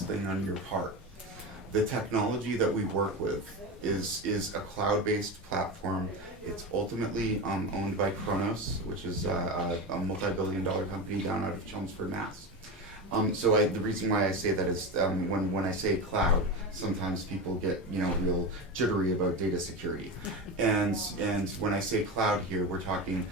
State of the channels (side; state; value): both; normal; correlation 0.21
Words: thing on your part. The technology that we work with is a cloud-based platform. It's ultimately owned by Kronos, which is a multi-billion-dollar company down out of Chelmsford, Mass. The reason why I say that is when I say cloud, sometimes people get real jittery about data security, and when I say cloud here, we're talking